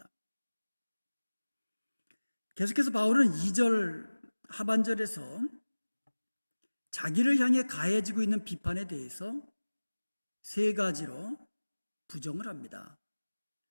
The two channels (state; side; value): inverted; both; correlation -1.00